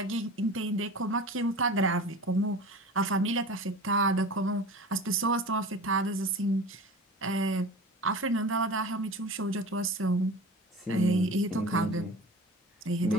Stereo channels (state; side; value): normal; both; correlation 0.36